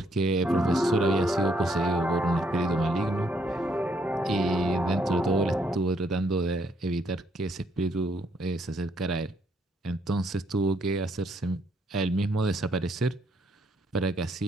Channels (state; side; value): normal; both; correlation 0.71